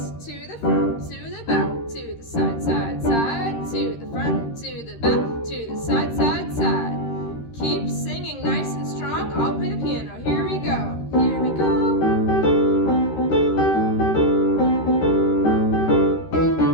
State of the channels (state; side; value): late; right; 13 ms